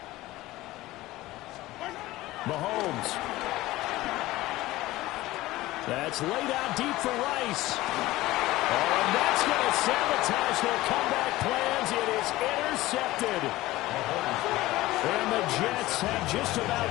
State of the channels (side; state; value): right; quieter; 17.7 dB